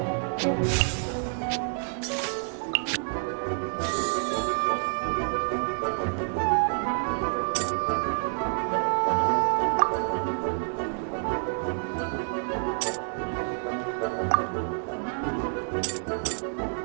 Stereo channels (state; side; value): silent; left; 59 dB below the other